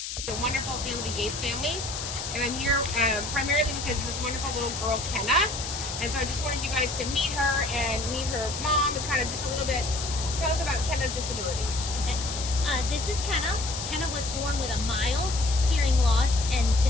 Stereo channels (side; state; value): left; noise; hiss, 6 dB below the sound